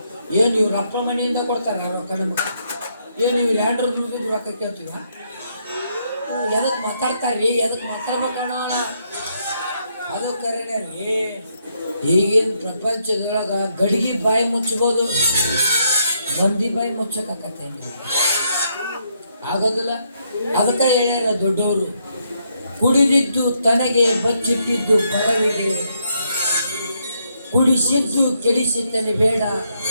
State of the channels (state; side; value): inverted; both; correlation -0.75